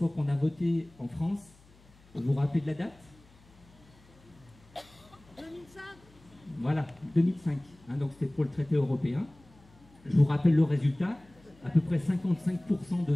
qu'on a voté en France, vous vous rappelez de la date ? 2005. Voilà, 2005. Donc c'était pour le traité européen. Je vous rappelle le résultat, à peu près 55% de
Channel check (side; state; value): left; noise; hum, 27 dB below the sound